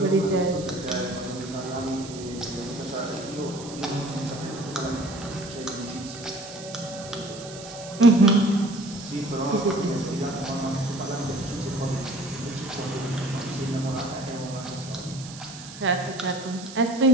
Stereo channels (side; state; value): right; noise; hiss, 14 dB below the sound